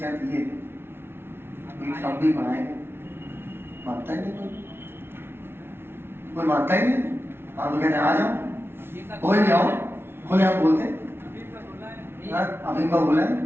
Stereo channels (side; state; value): left; late; 0.11 ms